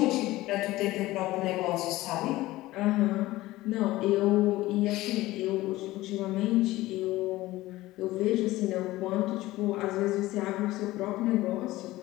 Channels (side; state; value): right; quieter; 17.6 dB